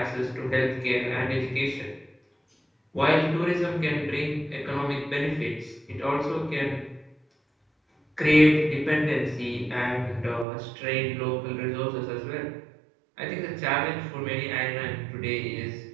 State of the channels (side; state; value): left; drops out; at 10.5 s